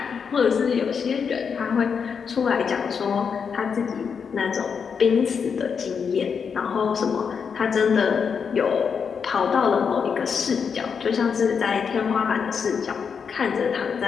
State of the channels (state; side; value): quieter; right; 6.4 dB